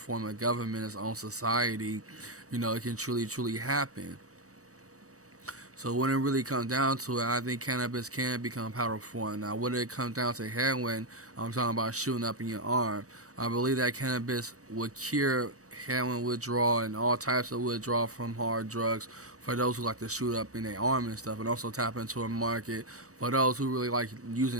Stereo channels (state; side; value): late; left; 0.66 ms